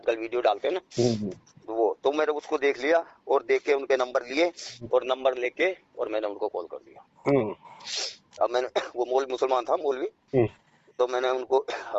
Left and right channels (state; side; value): identical; both; correlation 1.00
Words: वीडियो डालते हैं ना, वो तो मैंने उसको देख लिया और देख के उनके नंबर लिए और नंबर लेके और मैंने उनको कॉल कर दिया। अब मैंने वो मुसलमान था मौलवी, तो मैंने उनको